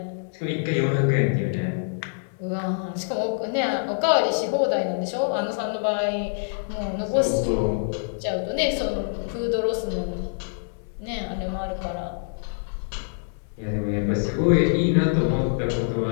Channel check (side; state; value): right; silent; digital silence